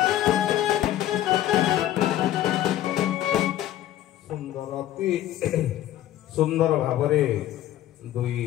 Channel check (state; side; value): quieter; right; 13.0 dB